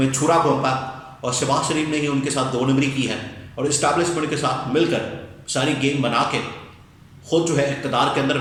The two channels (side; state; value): both; identical; correlation 1.00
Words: چھرا گھونپا، اور شہباز شریف نے ہی ان کے ساتھ دو نمبری کی ہے، اور اسٹیبلشمنٹ کے ساتھ مل کر ساری گیم بنا کے خود جو ہے اقتدار کے اندر